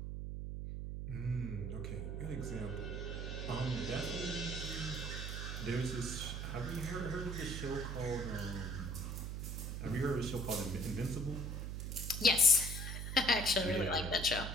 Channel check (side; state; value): right; noise; hum, 4 dB below the sound